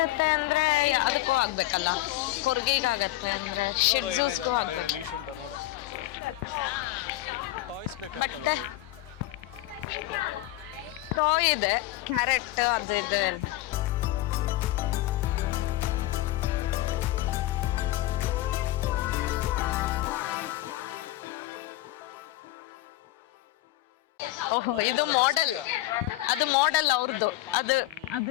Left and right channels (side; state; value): right; quieter; 16.5 dB